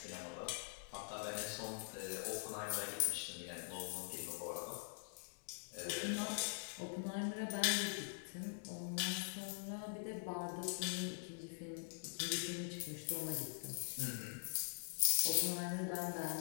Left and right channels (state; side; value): silent; right; digital silence